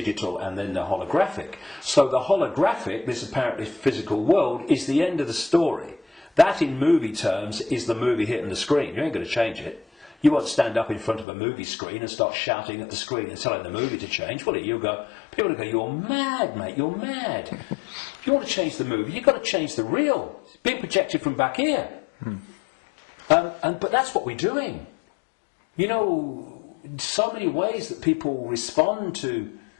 and then the holographic. So the holographic, this apparently physical world, is the end of the story. That, in movie terms, is the movie hitting the screen. You ain't going to change it. You won't stand up in front of a movie screen and start shouting at the screen and telling the movie to change, will it? People will go, you're mad, mate, you're mad. If you want to change the movie, you've got to change the reel. It's being projected from back here. But that's what we're doing. You know, so many ways that people respond to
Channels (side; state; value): right; drops out; at 11.2 s